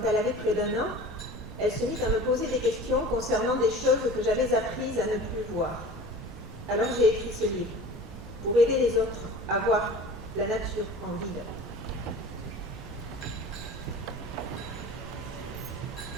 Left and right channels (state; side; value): noise; right; rumble, 12 dB below the sound